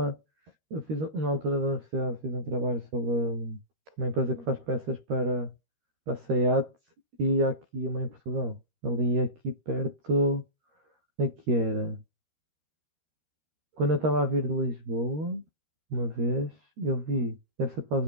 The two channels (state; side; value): late; left; 13 ms